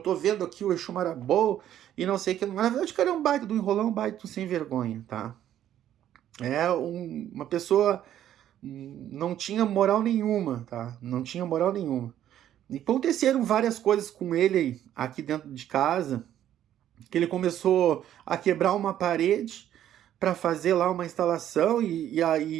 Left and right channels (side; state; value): left; quieter; 11.4 dB